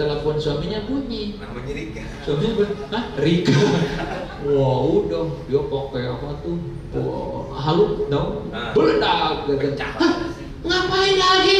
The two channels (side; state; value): both; identical; correlation 1.00